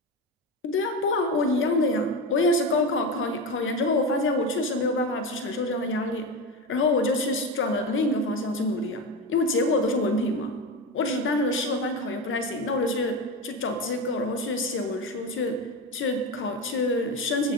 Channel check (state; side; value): normal; both; correlation 0.19